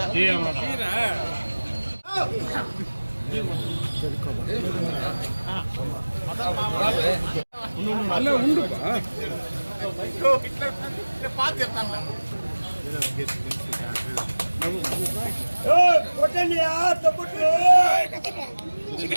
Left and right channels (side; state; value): both; inverted; correlation -1.00